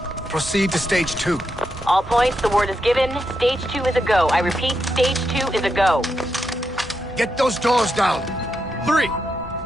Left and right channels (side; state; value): both; normal; correlation 0.84